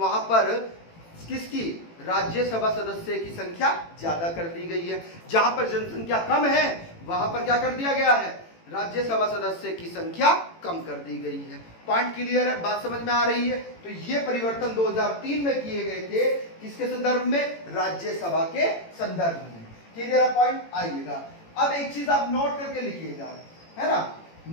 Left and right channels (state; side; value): late; right; 18 ms